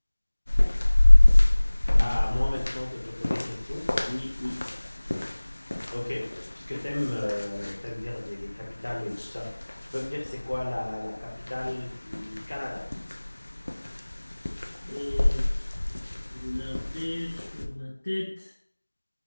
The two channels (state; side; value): inverted; both; correlation -1.00